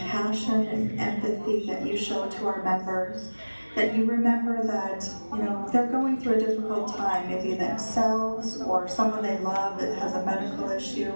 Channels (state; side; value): inverted; both; correlation -1.00